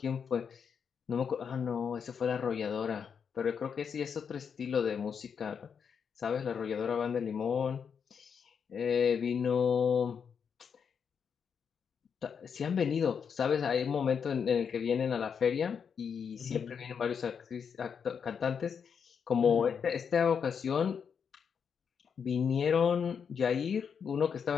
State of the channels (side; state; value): right; quieter; 6.8 dB